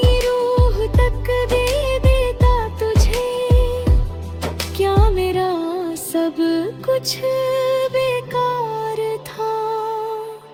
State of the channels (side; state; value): both; identical; correlation 1.00